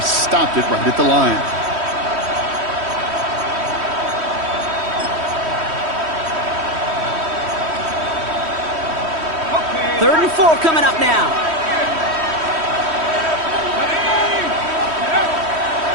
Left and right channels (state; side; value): late; left; 3.1 ms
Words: stopped it right at the line. Third and 4 coming up now.